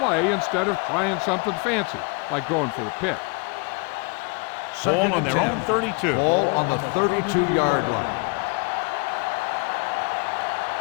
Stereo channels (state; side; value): quieter; right; 31.4 dB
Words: instead of trying something fancy, like going for the pick. Ball on their own 32. Ball on the 32-yard line. Let's run, man.